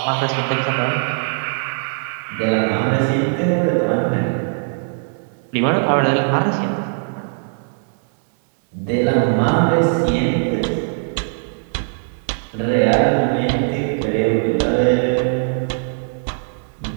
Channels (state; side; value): silent; left; digital silence